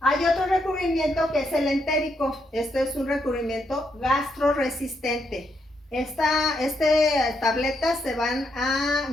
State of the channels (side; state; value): both; normal; correlation 0.78